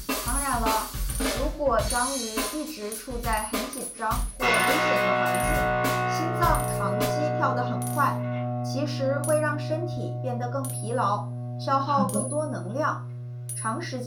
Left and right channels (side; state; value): both; identical; correlation 1.00